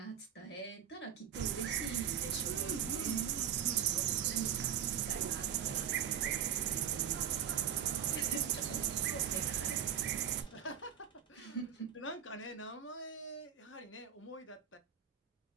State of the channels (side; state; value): left; quieter; 9.5 dB